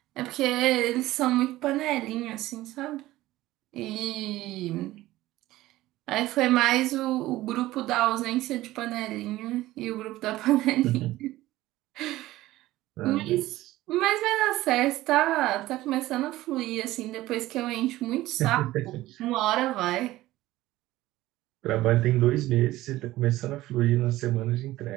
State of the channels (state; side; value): quieter; left; 16.6 dB